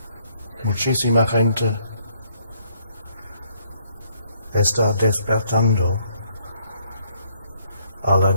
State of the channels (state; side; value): inverted; both; correlation -0.69